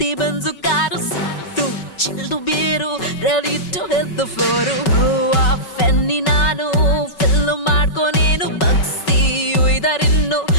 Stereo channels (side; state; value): right; late; 5.3 ms